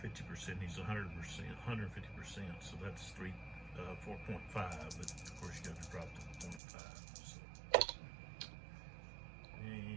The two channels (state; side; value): drops out; left; at 6.6 s